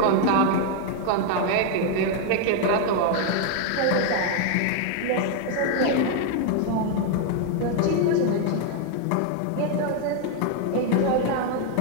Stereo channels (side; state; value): both; different; correlation 0.00